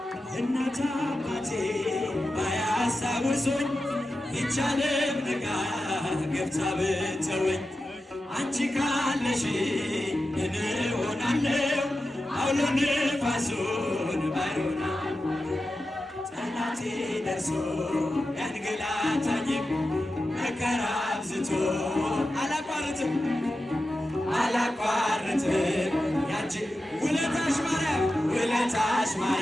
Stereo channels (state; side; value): normal; both; correlation 0.92